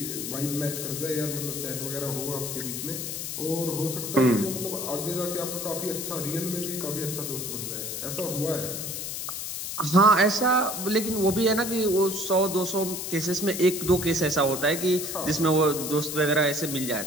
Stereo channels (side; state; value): left; noise; hiss, 5 dB below the sound